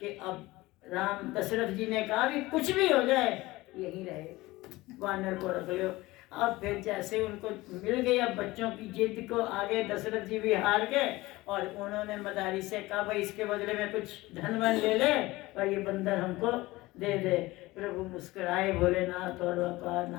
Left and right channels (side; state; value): right; quieter; 19.7 dB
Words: अब राम दशरथ जी ने कहा भी कुछ भी हो जाए यही रहे, वानर को रख लो। अब फिर जैसे उनको मिल गई अब बच्चों की जिद को आगे दशरथ जी भी हार गए और उन्होंने मदारी से कहा भाई इसके बदले में कुछ धन वन ले ले और ये बंदर हमको दे दे। प्रभु मुस्कुराए भोलेनाथ और कहा